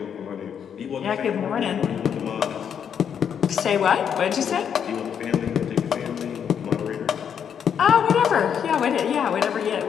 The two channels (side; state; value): right; quieter; 8.0 dB